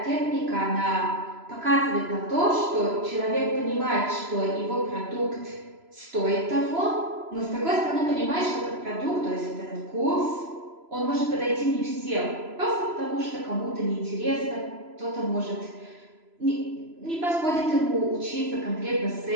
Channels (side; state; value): left; late; 3.0 ms